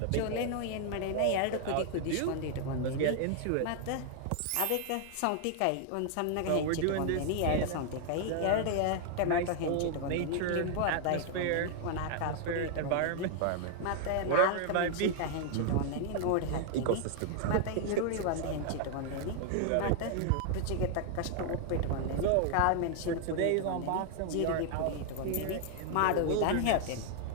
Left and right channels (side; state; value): both; different; correlation 0.00